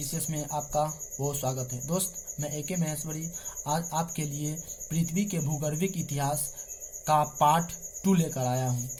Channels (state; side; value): identical; both; correlation 1.00